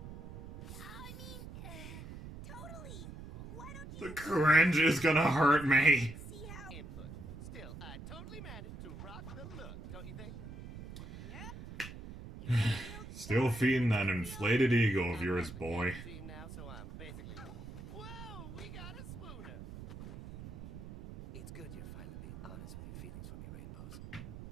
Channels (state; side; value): noise; right; rumble, 12 dB below the sound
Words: I mean, totally. Why don't you... The cringe is gonna hurt me. See how... Input. Still, I totally managed to rock the look, don't you think? Yep. Still feeding that inflated ego of yours, boy. Team now, so I'm basically... Whoa, we got a swooner. It's good you're finally being honest with your feelings for me, Rainbows.